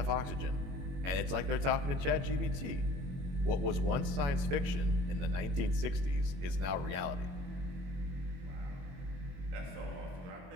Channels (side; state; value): left; late; 22 ms